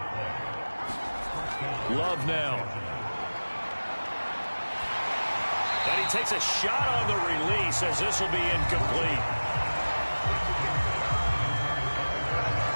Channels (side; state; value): both; inverted; correlation -1.00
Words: Love now. And he takes a shot on the release as this will be incomplete.